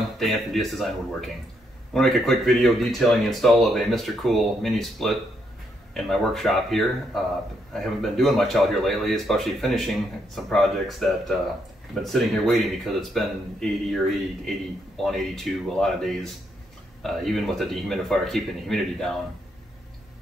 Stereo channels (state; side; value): normal; both; correlation 0.76